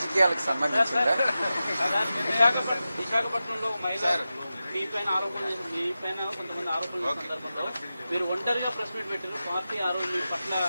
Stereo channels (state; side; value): inverted; both; correlation -0.93